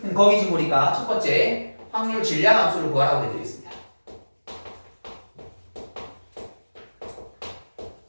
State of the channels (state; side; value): inverted; both; correlation -1.00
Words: 거기 지금 보니까 첫 번째 확률 질량 함수를 구하라고 해드리겠습니다.